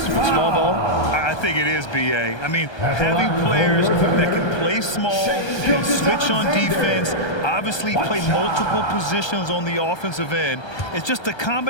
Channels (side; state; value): right; late; 1.3 ms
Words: with small ball? I think it is, B.A. I mean, having players that can play small, can switch on defense, obviously play multiple positions on the offensive end. It's just a